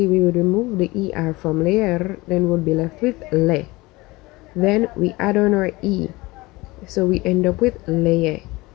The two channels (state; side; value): quieter; right; 21.6 dB